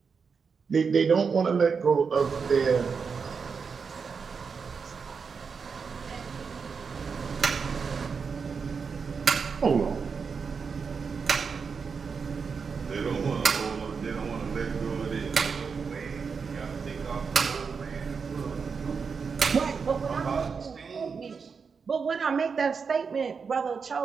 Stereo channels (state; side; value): quieter; left; 5.6 dB